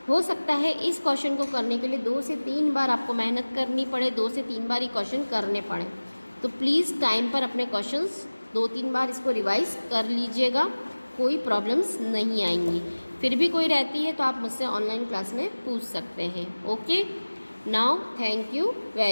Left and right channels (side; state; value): both; inverted; correlation -1.00